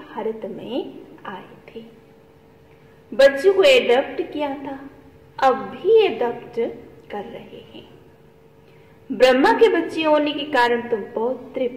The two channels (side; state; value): both; identical; correlation 1.00